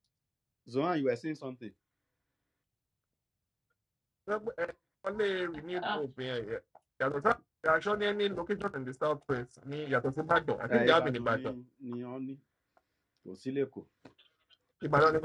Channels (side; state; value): both; identical; correlation 1.00